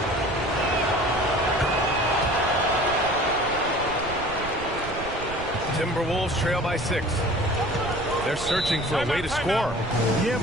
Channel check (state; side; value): noise; right; rumble, 12 dB below the sound